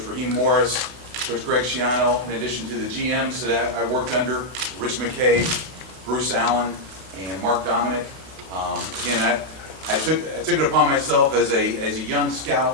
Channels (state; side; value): late; left; 32 ms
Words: Raheem Morris, Coach Greg Schiano, in addition to the GMs that I worked under, Rich McKay, Bruce Allen, and Mark Dominic. Again, I took it upon myself as a young